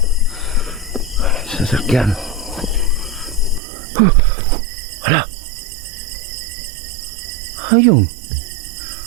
Sasakyan. Hala. Ayun.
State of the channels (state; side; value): drops out; left; at 3.6 s